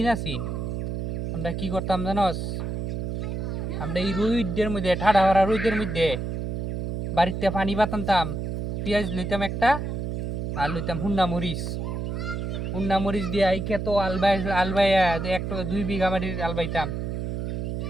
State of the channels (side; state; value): right; noise; hum, 3 dB below the sound